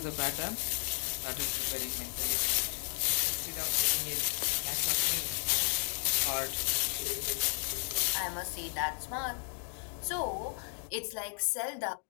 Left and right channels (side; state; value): right; silent; 55 dB below the other